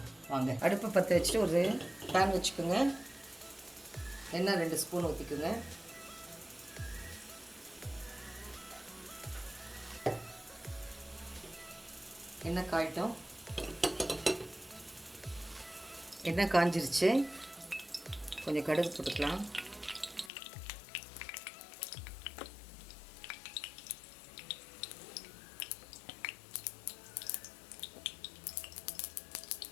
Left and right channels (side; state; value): right; drops out; at 20.3 s